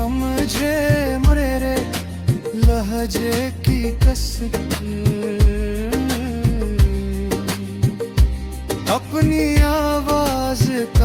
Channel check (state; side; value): identical; both; correlation 1.00